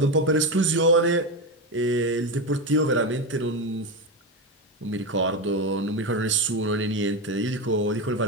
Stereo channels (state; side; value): normal; both; correlation 0.14